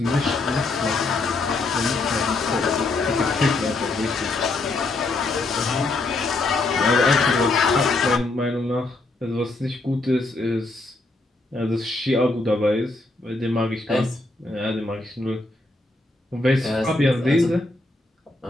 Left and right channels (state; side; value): quieter; right; 3.1 dB